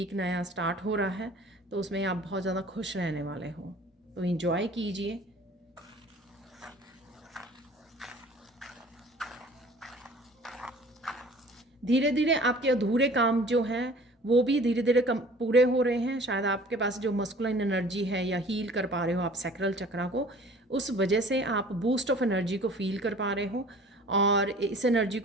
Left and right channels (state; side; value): normal; both; correlation 0.48